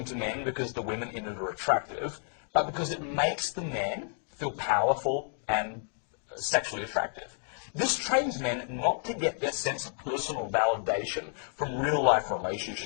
to men because the women in it are attractive, but because it makes the man feel powerful and sexually attractive. This trains men not to get their sense of personal validation from real-life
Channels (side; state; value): right; silent; 55 dB below the other